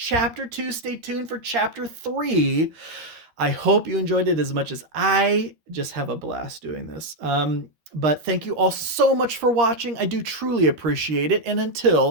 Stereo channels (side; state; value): left; late; 12 ms